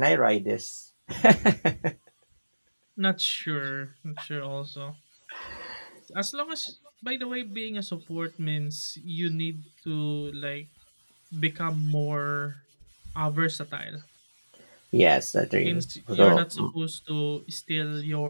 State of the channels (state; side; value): inverted; both; correlation -1.00